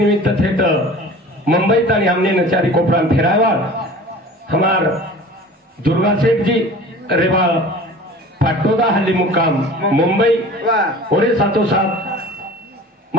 थे तो मुंबई तक हमने नचारी कोपरान फिरावा हमार दुर्गा सेठ जी रेवा पाटोदा हल्ली मुक्काम मुंबई और साथों साथ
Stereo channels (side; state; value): both; normal; correlation 0.41